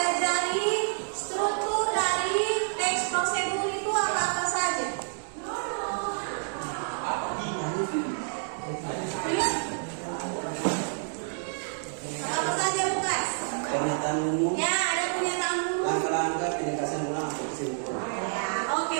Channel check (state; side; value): silent; left; 59 dB below the other